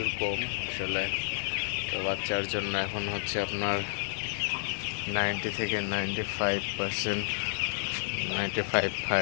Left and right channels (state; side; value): silent; right; digital silence